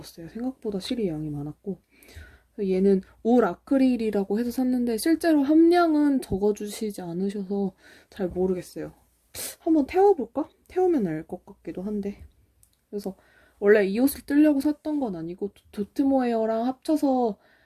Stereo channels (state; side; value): identical; both; correlation 1.00